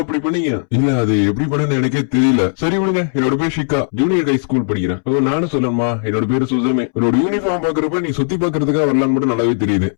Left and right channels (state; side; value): silent; right; 69 dB below the other